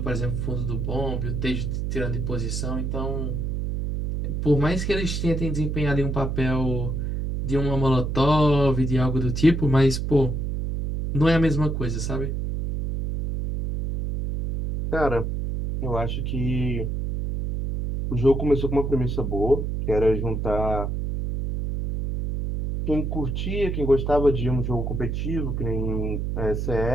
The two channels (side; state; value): right; noise; hum, 2 dB below the sound